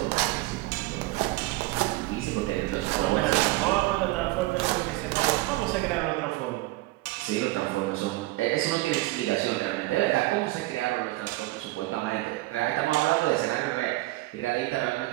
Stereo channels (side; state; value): left; quieter; 19.7 dB